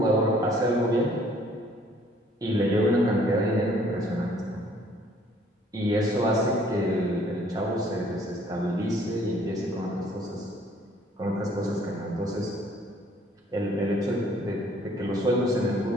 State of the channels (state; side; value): normal; both; correlation 0.59